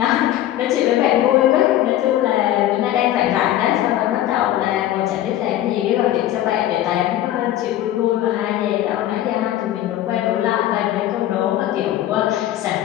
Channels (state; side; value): quieter; right; 13.1 dB